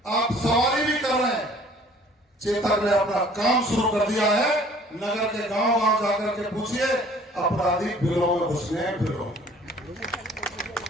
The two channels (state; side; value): normal; both; correlation 0.53